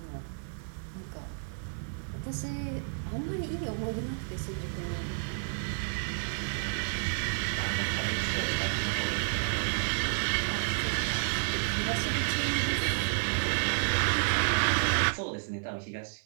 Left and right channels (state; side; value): silent; left; digital silence